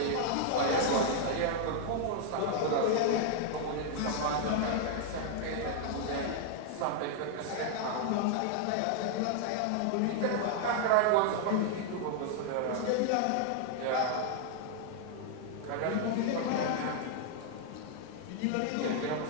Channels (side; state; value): both; different; correlation 0.00